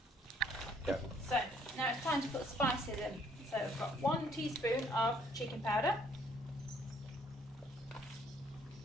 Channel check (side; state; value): both; normal; correlation 0.64